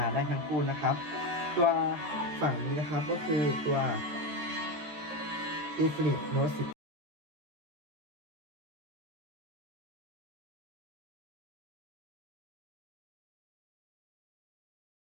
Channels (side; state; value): left; late; 13 ms